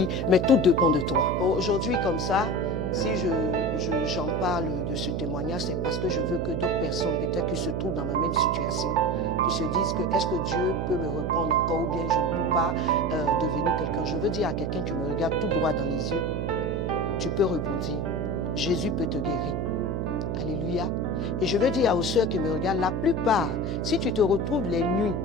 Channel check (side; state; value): right; noise; hum, 1 dB below the sound